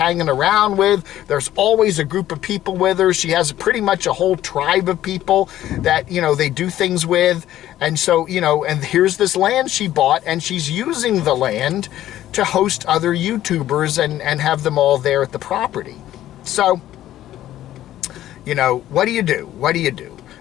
around with. There's always a group of people with her. She has pretty much a whole tribe of people that, you know, they do things with. And so, you know, and here's this land she bought, and she's using the land to host other YouTubers and have them all there at the property. So, you know, what do you do? What do you do?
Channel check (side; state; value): right; quieter; 13.2 dB